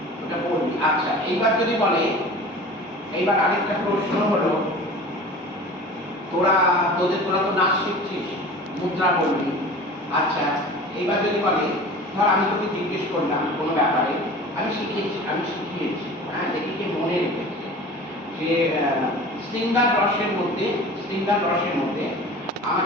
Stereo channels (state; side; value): normal; both; correlation 0.39